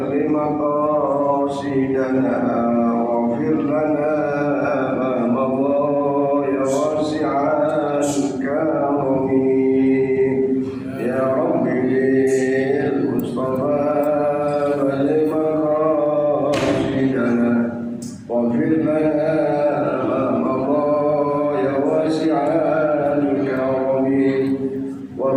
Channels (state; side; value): identical; both; correlation 1.00